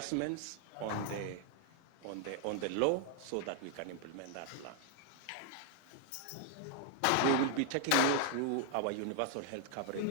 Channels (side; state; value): both; different; correlation 0.00